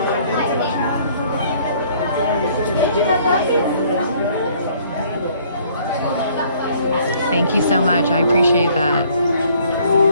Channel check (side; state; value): both; inverted; correlation -0.60